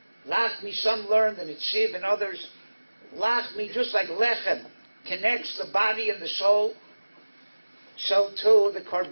some learned, and it's Siv and others, lachmi, just like lechem, connects the body and the soul, so too the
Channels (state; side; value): inverted; both; correlation -1.00